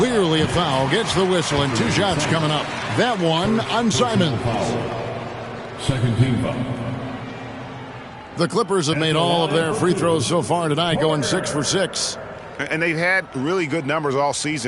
a foul. Gets the whistle, and 2 shots coming up. That one on Simons. Second team foul. The Clippers have made all of their free throws so far tonight, going 6 for 6. And they've had really good numbers all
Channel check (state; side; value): identical; both; correlation 1.00